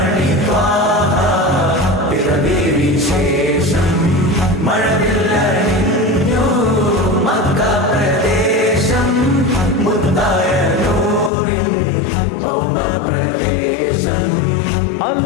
വിശേഷം മഴവില്ലണിഞ്ഞു മക്ക പ്രദേശം മുത്തായ നൂറിൻ ഭൗമപ്രവേശം.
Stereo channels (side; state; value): right; drops out; at 11.3 s